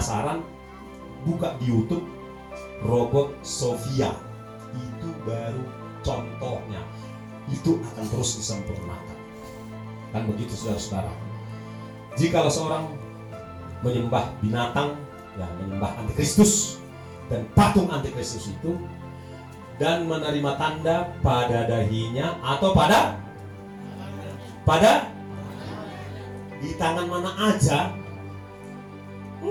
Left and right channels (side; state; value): both; identical; correlation 1.00